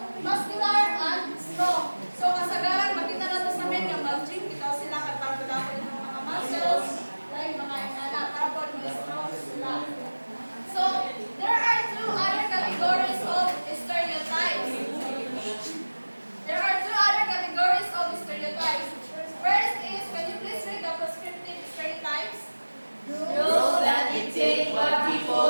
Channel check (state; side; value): inverted; both; correlation -1.00